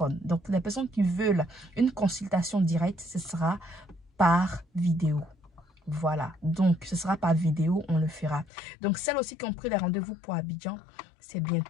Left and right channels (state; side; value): drops out; right; at 8.5 s